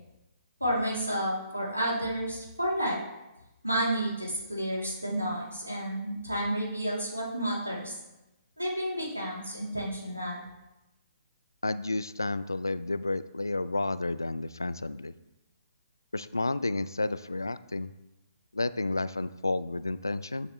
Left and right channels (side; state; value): both; inverted; correlation -0.81